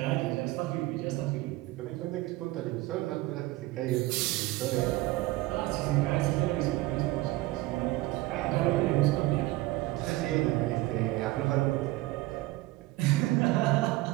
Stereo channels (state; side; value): quieter; left; 18.9 dB